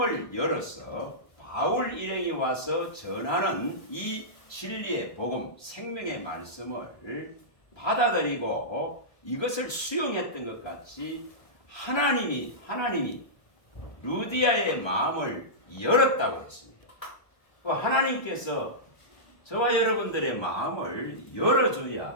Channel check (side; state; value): right; late; 1.3 ms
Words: 열어서 바울 일행이 와서 전하는 이 진리의 복음, 생명의 말씀을 받아들이고 이것을 수용했던 것 같이 하나님이 루디아의 마음을 열었다고 했습니다. 하나님께서 저와 여러분들의 마음을